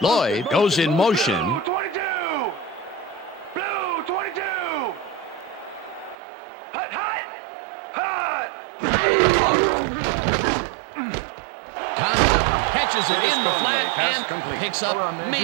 goes in motion. Blue 22! Blue 22! Hut, hut! Hut! Conley catches it in the flat and picks up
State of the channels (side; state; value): left; drops out; at 6.2 s